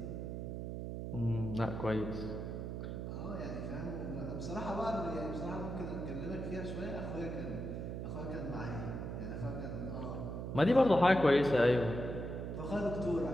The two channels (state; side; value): noise; right; hum, 5 dB below the sound